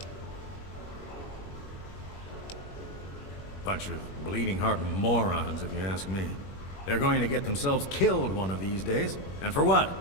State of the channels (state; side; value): late; right; 21 ms